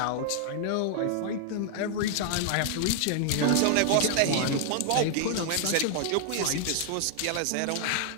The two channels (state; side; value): different; both; correlation 0.00